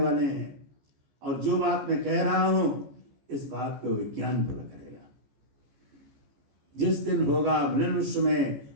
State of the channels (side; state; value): left; late; 14 ms